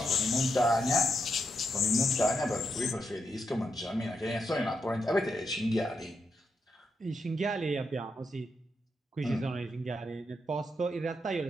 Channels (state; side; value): normal; both; correlation 0.83